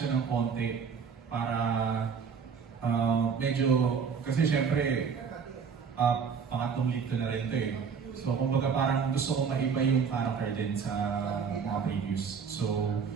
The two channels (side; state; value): left; quieter; 6.3 dB